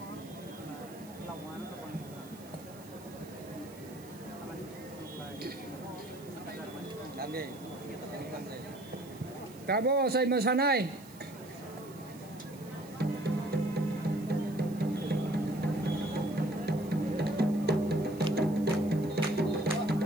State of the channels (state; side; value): noise; right; hiss, 21 dB below the sound